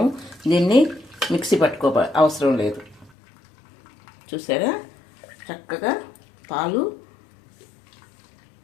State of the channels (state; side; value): drops out; right; at 3.1 s